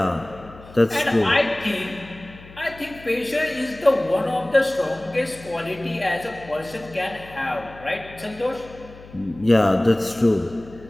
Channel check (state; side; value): noise; left; hum, 19 dB below the sound